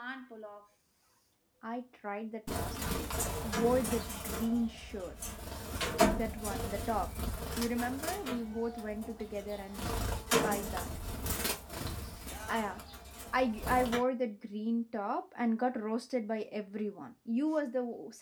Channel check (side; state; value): both; identical; correlation 1.00